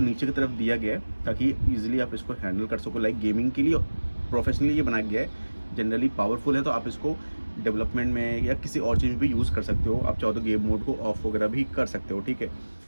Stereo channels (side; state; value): both; inverted; correlation -1.00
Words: की तरफ दिया गया है ताकि ईजिली आप इसको हैंडल कर सको। लाइक गेमिंग के लिए प्रोफेशनली ये बनाया गया है। जनरली पावरफुल है, तो आप इसको डेवलपमेंट में या किसी और चीज़ में भी यूज़ कर सकते हो। आप चाहो तो गेम मोड को ऑफ वगैरह भी कर सकते हो, ठीक है?